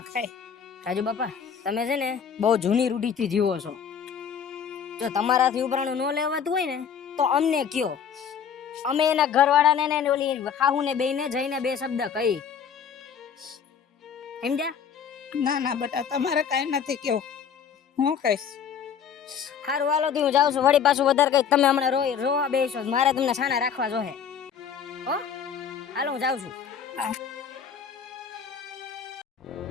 રાજુ બાપા તમે છે ને બહુ જૂની રૂઢીથી જીવો છો. જો તમારાથી ઉપરાણું ન લેવાતું હોય ને તો અમને કયો, અમે એના ઘરવાળાને ને ઓલી હાહુને બેયને જઈને બે શબ્દ કહી. સમજ્યા? ના ના બટા, તમારે કાઈ નથી કેવું, હું કહીશ. હારું હાલો થી હું જાઉં છું. વળી પાછું વધારે કઈ તમે હમણાં રોવા બેસો, મારે તમને સાના રાખવા જોહે. હો હાલો હું જાઉં છું.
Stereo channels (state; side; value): quieter; right; 7.4 dB